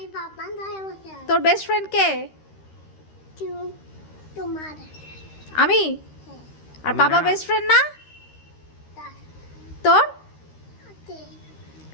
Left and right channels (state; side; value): late; right; 13 ms